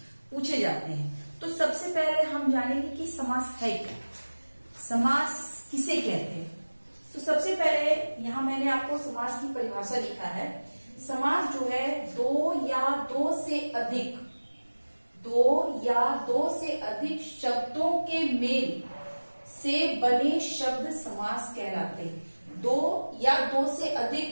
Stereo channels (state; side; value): inverted; both; correlation -1.00